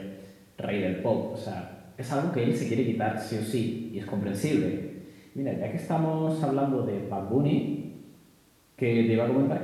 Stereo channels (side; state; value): both; identical; correlation 1.00